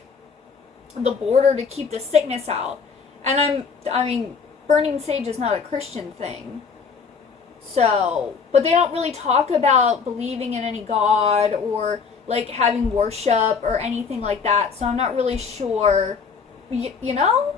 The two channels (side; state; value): right; quieter; 5.6 dB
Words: the border to keep the sickness out. And I mean, burning sage is not a Christian thing. So, but they don't really talk about believing in any god or like having worship or anything like that. So I'm not really sure, you know?